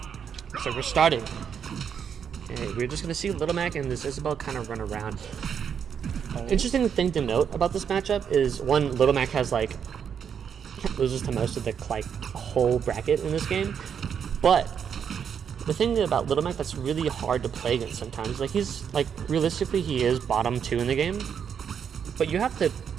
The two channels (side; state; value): left; quieter; 7.6 dB